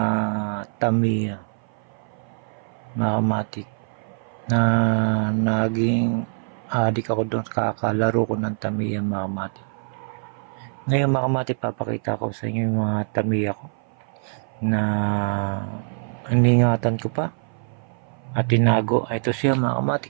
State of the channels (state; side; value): silent; left; 56 dB below the other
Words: Tamiya mga kamatik, na naging adik ako doon, kakalaro ko ng Tamiya mga kamatik. Ngayon mga kamatik, papakita ko sa inyo yung mga Tamiya ko na iningatan ko pa at tinago. Ito siya mga